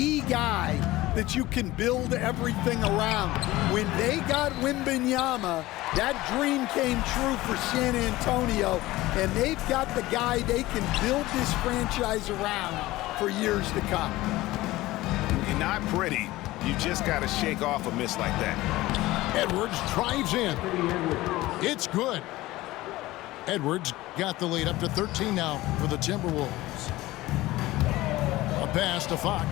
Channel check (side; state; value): right; quieter; 18.0 dB